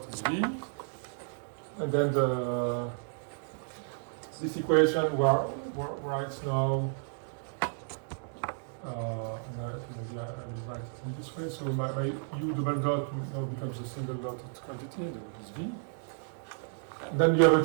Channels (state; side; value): silent; left; digital silence